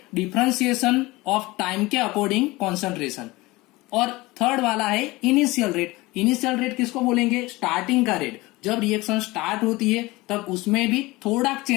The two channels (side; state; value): right; quieter; 21.1 dB